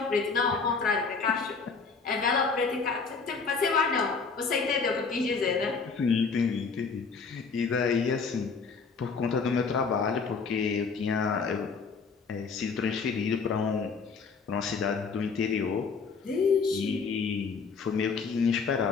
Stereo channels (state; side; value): quieter; right; 5.0 dB